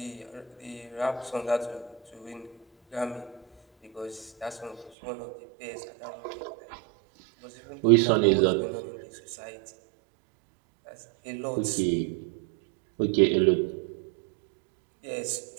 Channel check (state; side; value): drops out; left; at 4.9 s